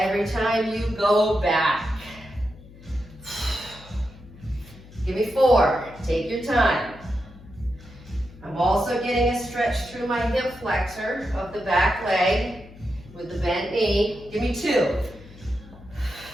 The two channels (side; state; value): left; noise; hum, 20 dB below the sound